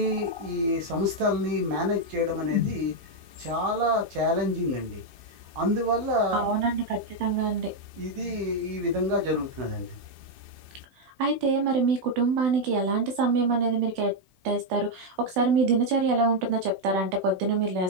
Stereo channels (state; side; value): late; left; 16 ms